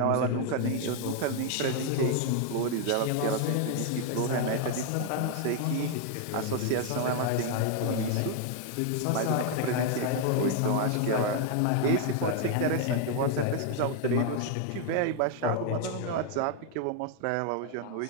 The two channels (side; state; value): both; different; correlation 0.00